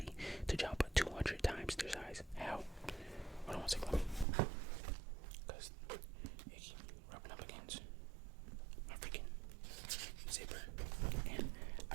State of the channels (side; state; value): left; drops out; at 4.2 s